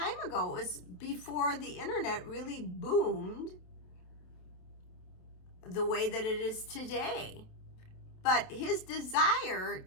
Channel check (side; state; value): right; late; 28 ms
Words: ago. It was before the internet really boomed the way that it is today. But his desire